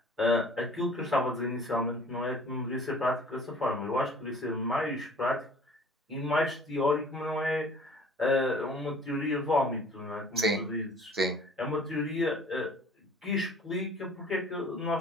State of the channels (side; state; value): both; normal; correlation 0.50